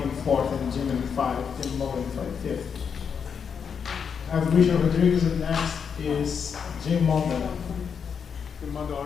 in fourth and Jim in 5, Tim Mullen in 5th. I have Richard Rodriguez and next is Jim Monda. Monda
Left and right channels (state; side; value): quieter; right; 6.7 dB